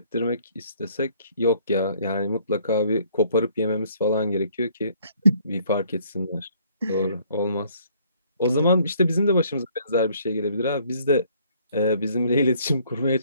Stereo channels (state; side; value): inverted; both; correlation -0.62